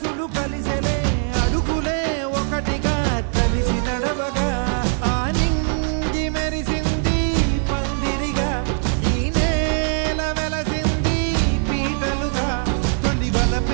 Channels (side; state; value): left; silent; 55 dB below the other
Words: కలిసెలే అడుగులే ఒకటిగా కలిసి నడవగా ఆ నింగి మెరిసింది పందిరిగా ఈ నేల వెలసింది పీటలుగా తొలి